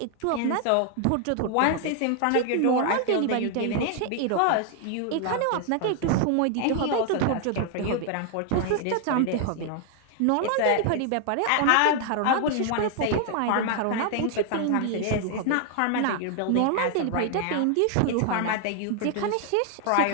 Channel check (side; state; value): both; different; correlation 0.00